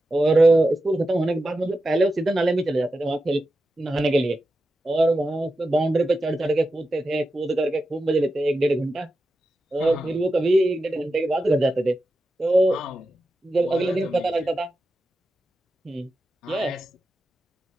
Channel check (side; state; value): both; normal; correlation 0.90